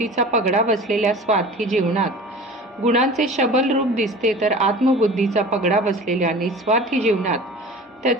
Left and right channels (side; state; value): both; normal; correlation 0.39